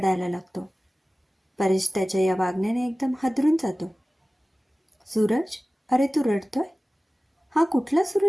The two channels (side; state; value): both; normal; correlation 0.97